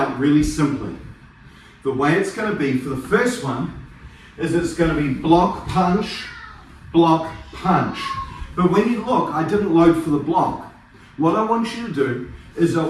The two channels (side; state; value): both; identical; correlation 1.00